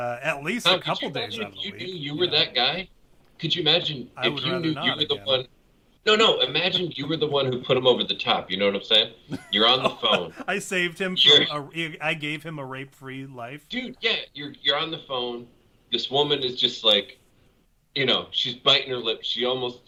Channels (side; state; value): both; identical; correlation 1.00